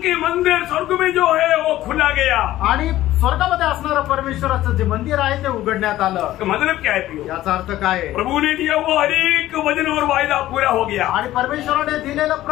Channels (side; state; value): right; quieter; 14.8 dB